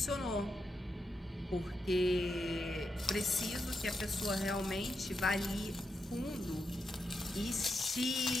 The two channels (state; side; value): normal; both; correlation 0.85